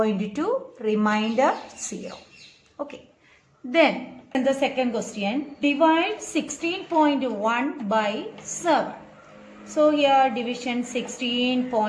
remainder 0. Okay. Then in the second question, divide 16.1 by 7. So here division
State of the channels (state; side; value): identical; both; correlation 1.00